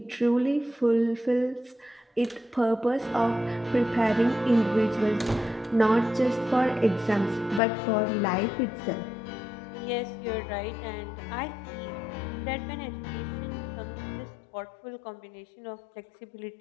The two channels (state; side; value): drops out; right; at 7.6 s